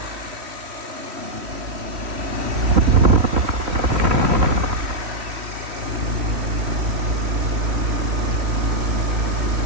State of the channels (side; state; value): left; late; 3.1 ms